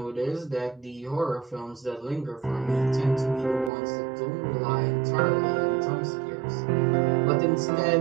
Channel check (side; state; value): left; drops out; at 3.7 s